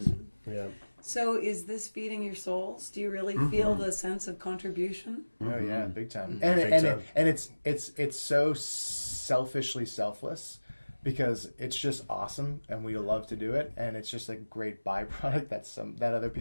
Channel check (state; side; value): inverted; both; correlation -1.00